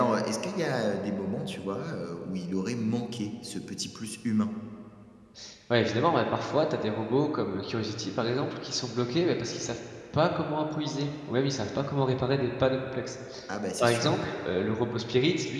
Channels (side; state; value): both; identical; correlation 1.00